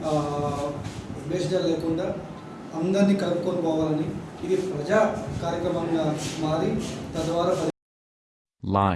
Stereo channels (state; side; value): identical; both; correlation 1.00